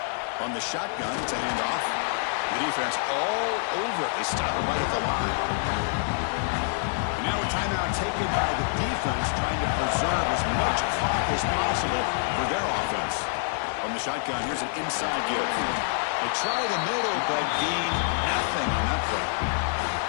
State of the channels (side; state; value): right; silent; 60 dB below the other